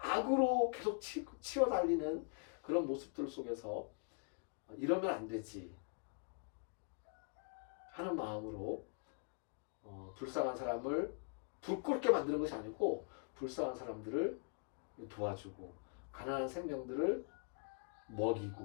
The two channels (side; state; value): right; quieter; 39.6 dB